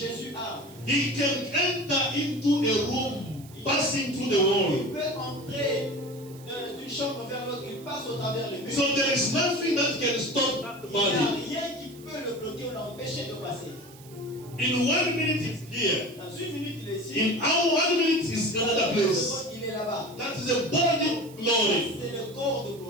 a. He can enter into a room, passing through the wall. Il peut entrer d'une chambre vers l'autre, il passe au travers les murs. So there is nothing that can stop that Il n'y a body. rien qui peut le bloquer ou l'empêcher de passer. In 1 minute he's here. Dans une minute, il est ici. In our 1 minute is another place. Il est là-bas. That is a body of glory. C'est le corps de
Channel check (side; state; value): right; noise; hiss, 22 dB below the sound